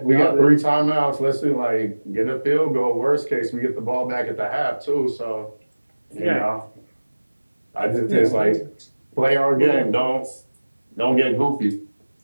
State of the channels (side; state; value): both; inverted; correlation -1.00